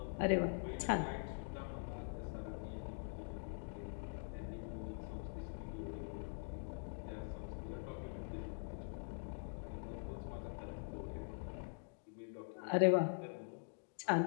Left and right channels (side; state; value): right; silent; digital silence